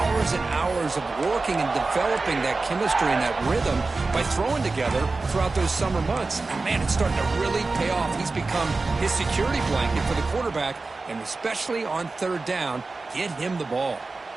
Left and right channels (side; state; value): left; quieter; 3.7 dB